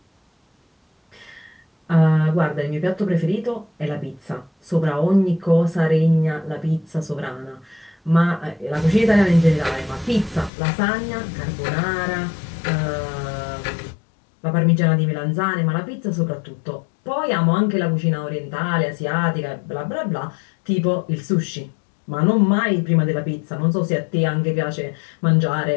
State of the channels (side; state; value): right; drops out; at 10.5 s